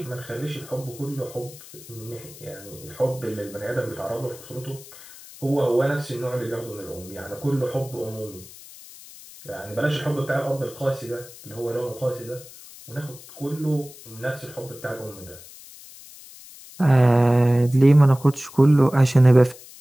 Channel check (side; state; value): left; noise; hiss, 19 dB below the sound